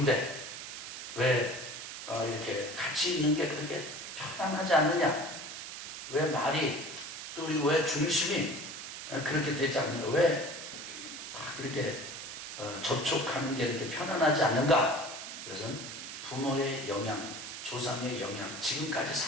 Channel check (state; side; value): noise; right; hiss, 9 dB below the sound